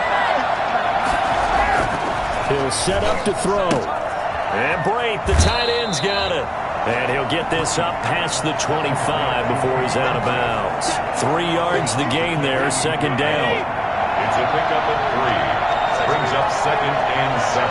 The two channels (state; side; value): identical; both; correlation 1.00